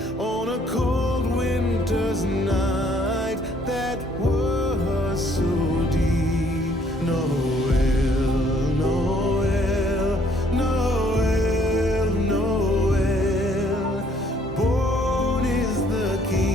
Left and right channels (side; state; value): both; normal; correlation 0.64